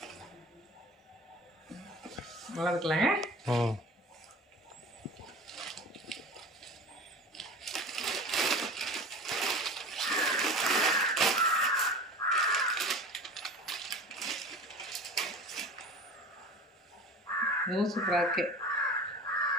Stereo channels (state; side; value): normal; both; correlation 0.37